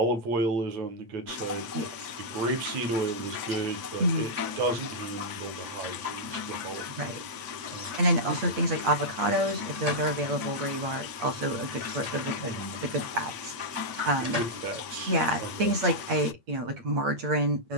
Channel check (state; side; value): late; left; 8.6 ms